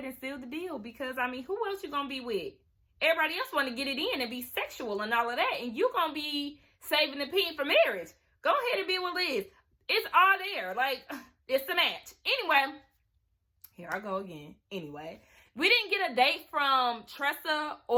and seal the deal, because I mean, who else you gonna be with? Everybody else want to get it in and be sexual and all of that, and you gonna be saving the pin for marriage. Go ahead and be with Liz. It's all there. Like, it's the match. Anyway, here I go again. Anyway, we didn't get a date from Tressa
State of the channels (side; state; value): both; identical; correlation 1.00